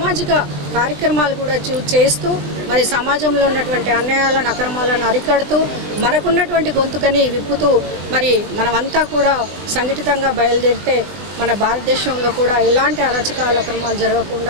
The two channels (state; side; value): late; left; 20 ms